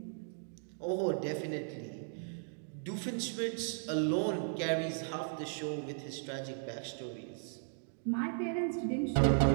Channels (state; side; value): silent; left; digital silence